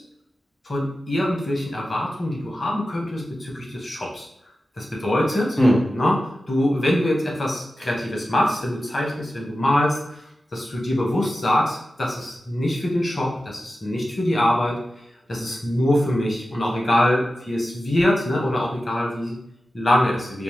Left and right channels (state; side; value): normal; both; correlation 0.93